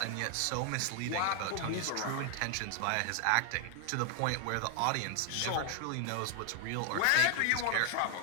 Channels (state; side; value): different; both; correlation 0.00